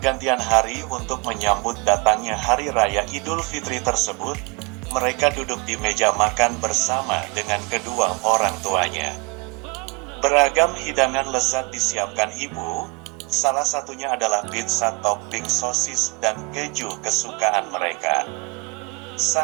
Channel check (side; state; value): left; quieter; 26.8 dB